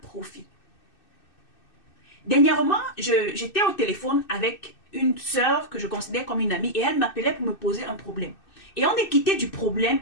Dernièrement, j'étais au téléphone avec une sœur que je considère comme une amie et elle m'appelait pour me poser un problème. Et on est quitté du problème,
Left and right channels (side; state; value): right; late; 2.6 ms